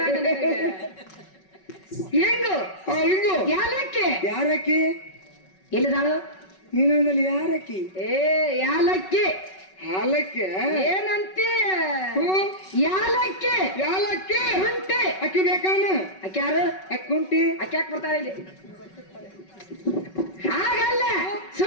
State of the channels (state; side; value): late; right; 5.3 ms